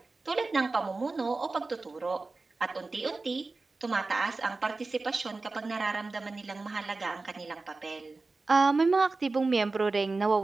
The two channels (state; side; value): quieter; left; 3.6 dB